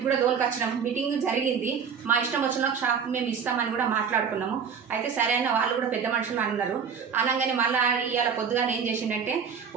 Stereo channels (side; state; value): left; quieter; 6.7 dB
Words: కూడా దోలుకొచ్చినాం. మీటింగ్ జరిగింది. మా ఇష్టం వచ్చిన షాప్ మేము ఇస్తామని కూడా మాట్లాడుకున్నాము. అయితే సరే అన్న వాళ్ళు కూడా పెద్ద మనుషులు అన్నారు. అనగానే మళ్ళీ ఇవాళ పొద్దుగానే ఏం చేసిండంటే